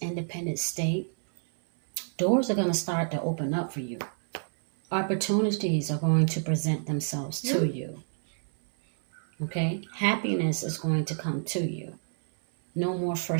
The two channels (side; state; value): left; silent; 59 dB below the other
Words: independent state, doors are going to start to open up for you. Opportunities are going to present themselves to you. Okay? Happiness is going to come to you. No more